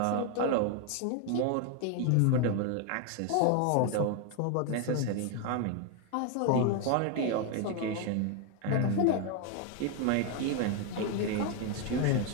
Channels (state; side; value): different; both; correlation 0.01